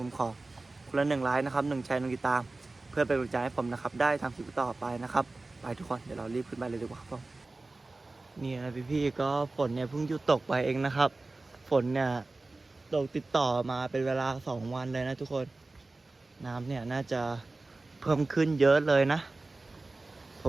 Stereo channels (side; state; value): left; quieter; 3.2 dB